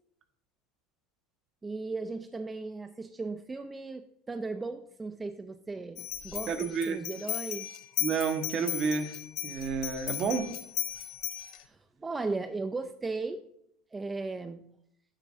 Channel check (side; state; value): both; normal; correlation 0.60